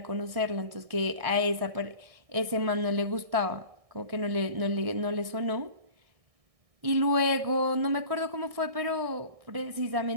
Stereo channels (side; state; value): left; late; 1.6 ms